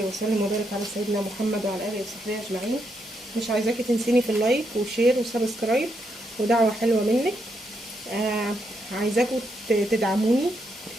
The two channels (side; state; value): both; normal; correlation 0.79